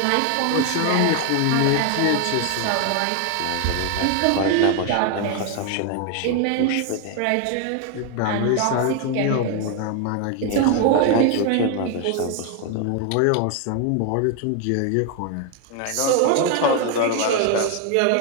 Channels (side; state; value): both; different; correlation 0.01